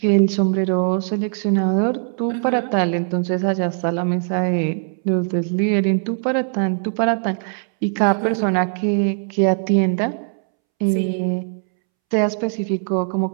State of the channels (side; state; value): left; silent; 66 dB below the other